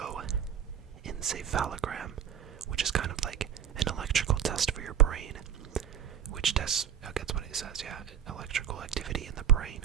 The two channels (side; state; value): left; quieter; 9.2 dB